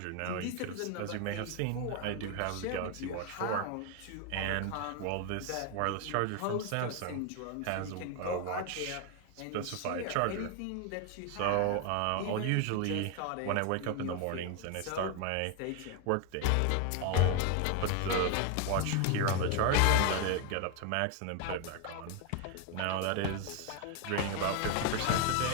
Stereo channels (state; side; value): different; both; correlation 0.01